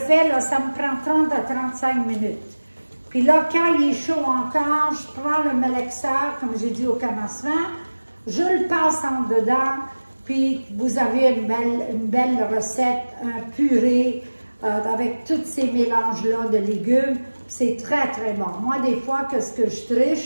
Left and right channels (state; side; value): inverted; both; correlation -1.00